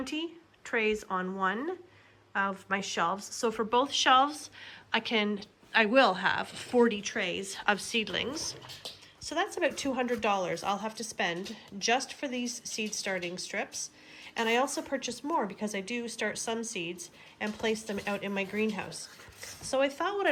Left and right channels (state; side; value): identical; both; correlation 1.00